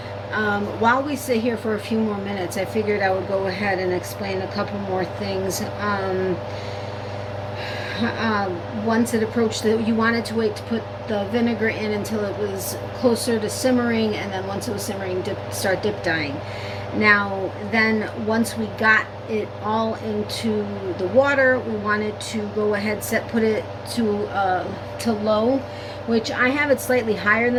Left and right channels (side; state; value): both; identical; correlation 1.00